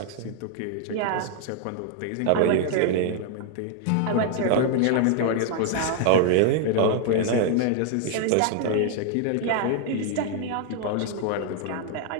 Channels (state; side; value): different; both; correlation 0.00